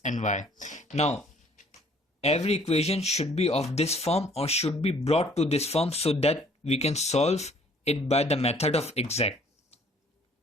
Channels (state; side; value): normal; both; correlation 0.58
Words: and y. Now, every equation should be of this form or should be brought to this form so that we can solve it by the method of exact.